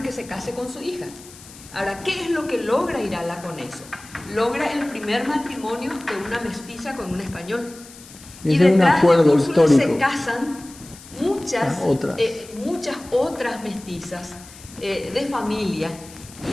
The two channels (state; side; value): noise; left; hiss, 19 dB below the sound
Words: que se case con su hija. Ahora, ¿qué es lo que logra Irala con eso? Logra el primer matrimonio de una mestiza con un español. Y detrás de Úrsula se casan muchas otras mestizas de familia